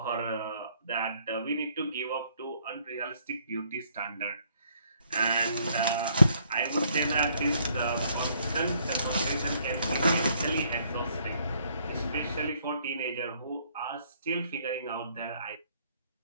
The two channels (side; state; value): both; inverted; correlation -0.66